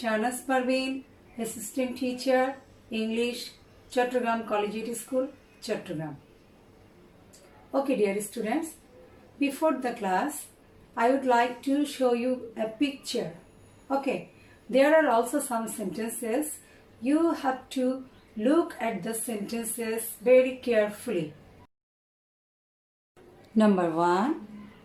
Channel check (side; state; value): both; identical; correlation 1.00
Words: Parveen, Assistant Teacher, English, Chattogram Collegiate School, Chattogram. Okay, dear students, before the class, I would like to show you a picture. Okay, there are also some sentences. You have to look at the sentences very carefully. Number 1.